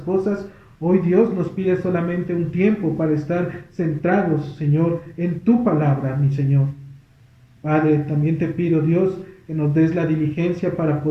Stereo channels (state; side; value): identical; both; correlation 1.00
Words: Hoy Dios nos pide solamente un tiempo para estar centrados, Señor, en tu palabra, mi Señor. Padre, también te pido, Dios, que nos des la diligencia para